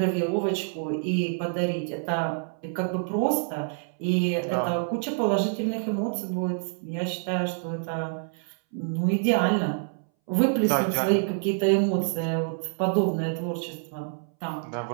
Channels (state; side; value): silent; left; 60 dB below the other